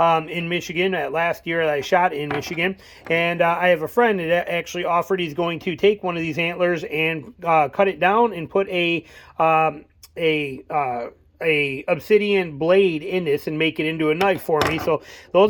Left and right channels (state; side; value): identical; both; correlation 1.00